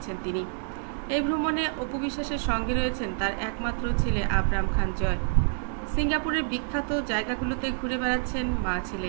তিনি। এই ভ্রমণে অপু বিশ্বাসের সঙ্গে রয়েছেন তার একমাত্র ছেলে আবরাম খান জয়। সিঙ্গাপুরের বিখ্যাত জায়গাগুলোতে ঘুরে বেড়াচ্ছেন মা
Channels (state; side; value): silent; left; 60 dB below the other